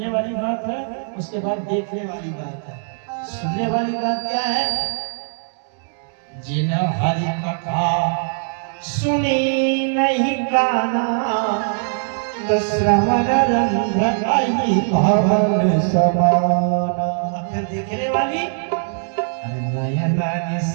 वाली बात है, उसके बाद देखने वाली बात है। सुनने वाली बात क्या है? जिन हरि कथा सुनी नहीं गाना, तो श्रवण रंध्र भवन समाना। फिर देखने वाली, नयना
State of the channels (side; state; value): left; silent; digital silence